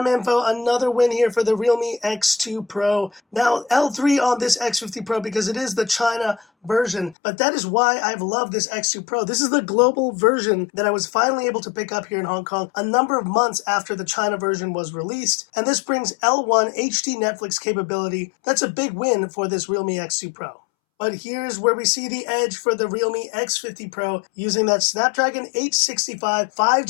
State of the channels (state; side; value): drops out; right; at 7.2 s